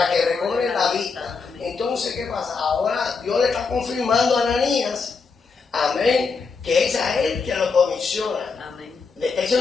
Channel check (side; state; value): right; quieter; 4.8 dB